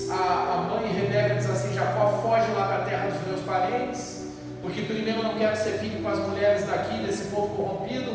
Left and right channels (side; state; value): both; identical; correlation 1.00